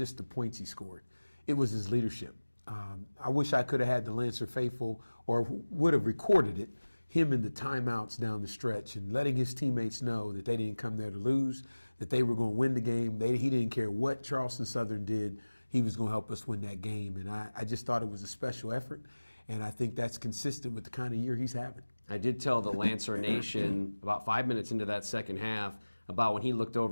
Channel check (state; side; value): inverted; both; correlation -1.00